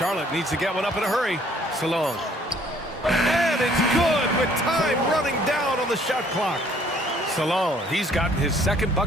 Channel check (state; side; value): normal; both; correlation 0.60